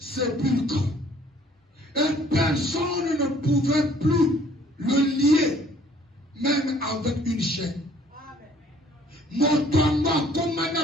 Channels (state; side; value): normal; both; correlation 0.58